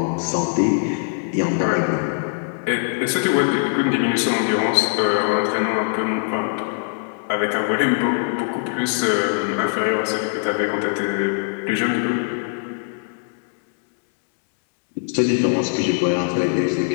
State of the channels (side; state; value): right; silent; digital silence